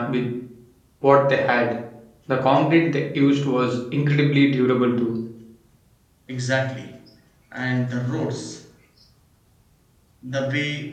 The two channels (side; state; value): both; identical; correlation 1.00